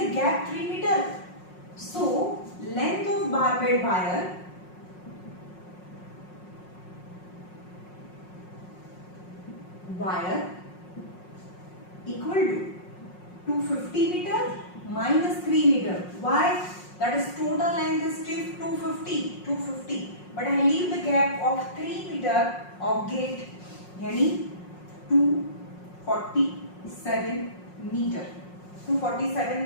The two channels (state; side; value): late; right; 5.5 ms